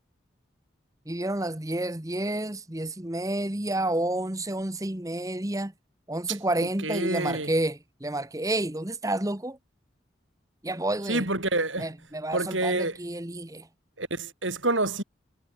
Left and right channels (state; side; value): normal; both; correlation 0.40